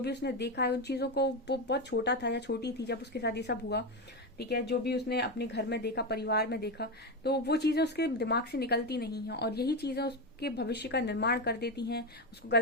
भी उसने देखा है उन चीजों को, वो बहुत छोटा था या छोटी थी जब उसके साथ ये सब हुआ, ठीक है। जो भी उसने अपने घर में देखा, परिवार में देखा, तो वो चीजें उसके दिमाग से निकलती नहीं है, और यही चीजें आपके भविष्य का निर्माण कर देती हैं, उसको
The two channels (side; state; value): both; normal; correlation 0.14